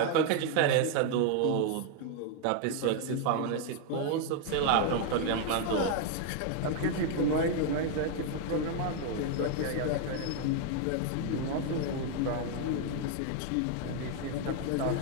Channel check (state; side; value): different; both; correlation 0.00